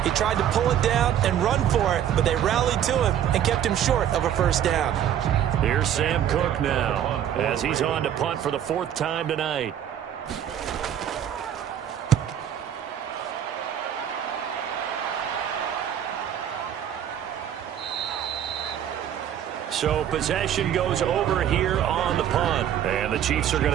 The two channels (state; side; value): quieter; left; 10.0 dB